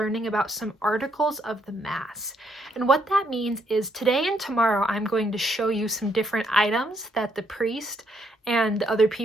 about some articles of the Mass. And what that means is today and tomorrow I'm going to show you some different items that the priest and other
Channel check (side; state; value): both; normal; correlation 0.73